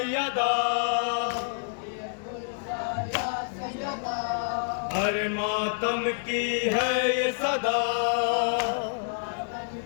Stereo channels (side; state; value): right; silent; 59 dB below the other